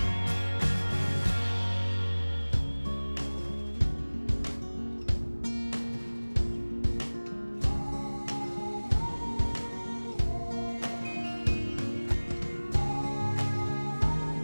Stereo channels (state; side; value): inverted; both; correlation -1.00